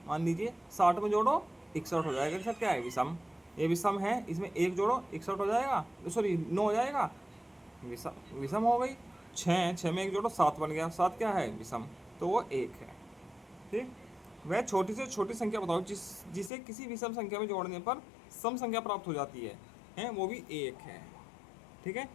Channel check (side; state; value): right; drops out; at 16.5 s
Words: मान लीजिए 60 में जोड़ो 61 हो जाएगा, सर क्या है विषम, ये विषम है। इसमें 1 जोड़ो 61 हो जाएगा, सॉरी 9 हो जाएगा, विषम हो गई। 6 में 1 जोड़ो 7 बन गया, 7 क्या है विषम, तो वो 1 है, ठीक। वह छोटी से छोटी संख्या बताओ जिसे किसी विषम संख्या में जोड़ने पर सम संख्या प्राप्त हो जाती है, वो भी 1 है, ठीक है।